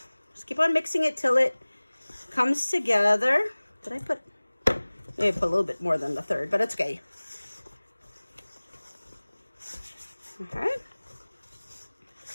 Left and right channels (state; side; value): inverted; both; correlation -1.00